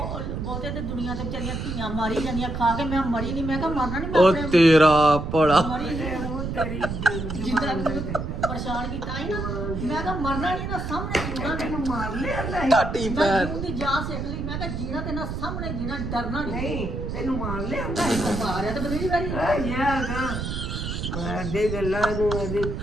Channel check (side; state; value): right; noise; rumble, 4 dB below the sound